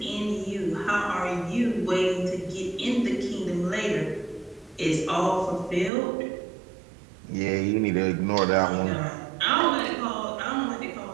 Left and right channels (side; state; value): left; drops out; at 5.9 s